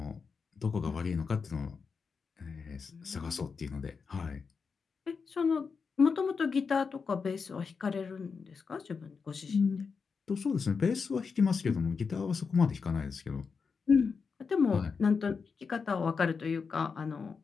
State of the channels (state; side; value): quieter; right; 5.3 dB